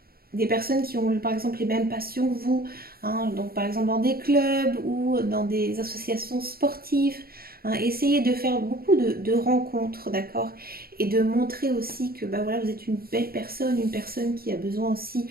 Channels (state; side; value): late; left; 0.44 ms